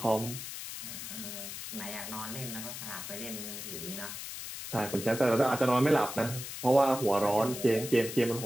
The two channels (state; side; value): noise; left; hiss, 8 dB below the sound